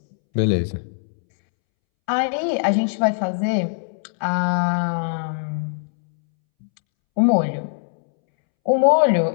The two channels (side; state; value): right; silent; 65 dB below the other